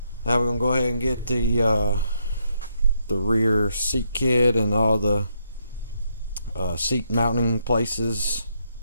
now we're gonna go ahead and get the rear seat kit and all the seat mounting places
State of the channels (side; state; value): both; inverted; correlation -0.77